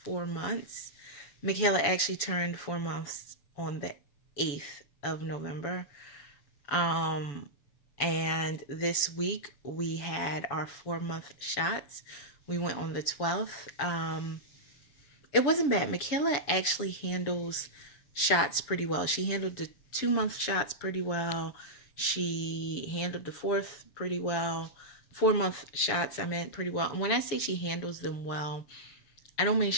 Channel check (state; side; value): late; right; 7.0 ms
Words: months. Michaela actually turned 4 months on the 8th of November. Um, and this week we had our 4 month shots. We went on the 12th. It wasn't bad. Michaela actually handles shots pretty well. She handled the 2 month shots pretty well. She handled the fourth pretty well. 4 month shots, I meant, pretty well. And when I say she handles them well, I don't mean